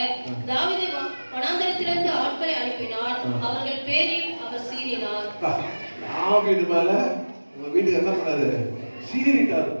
தாவீது வனாந்தரத்திலிருந்து ஆட்களை அனுப்பினார், அவர்கள் பேரில் அவர் சீறினார். தாவீது மேல உங்க வீட்டுக்கு என்ன பண்ணாரு,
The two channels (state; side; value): inverted; both; correlation -1.00